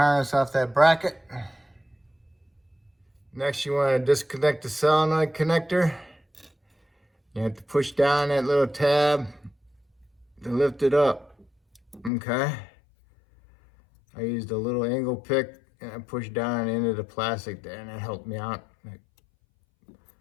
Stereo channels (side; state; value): right; drops out; at 12.1 s